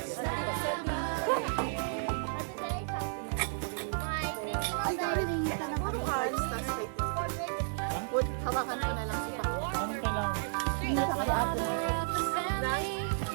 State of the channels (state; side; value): silent; left; 56 dB below the other